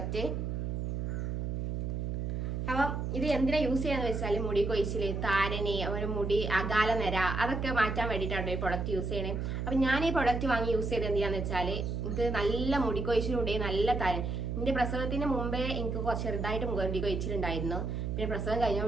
അപ്പം ഇത് എന്തിനാ യൂസ് ചെയ്യാന്ന് വെച്ചാൽ മുടി കൊഴിച്ചില്, താരന്, ഒരു മുടി അകാല നിര അതൊക്കെ മാറ്റാൻ വേണ്ടിയിട്ടാണ് ഈ പ്രൊഡക്റ്റ് യൂസ് ചെയ്യണേ. അപ്പം ഞാൻ ഈ പ്രൊഡക്റ്റ് വാങ്ങി യൂസ് ചെയ്ത് എന്തിനാന്ന് വെച്ചാൽ എനിക്ക് നല്ല മുടി കൊഴിച്ചിലുണ്ട്, നല്ല താരൻ. എന്റെ പ്രസവത്തിന് മുമ്പേ എനിക്ക് ചെറുതായിട്ട് മുടി കൊഴിച്ചിലുണ്ടായിരുന്നു. പിന്നെ പ്രസവം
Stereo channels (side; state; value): right; noise; hum, 2 dB below the sound